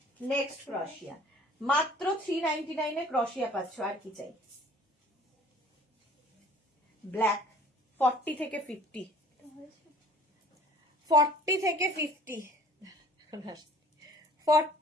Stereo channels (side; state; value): both; normal; correlation 0.51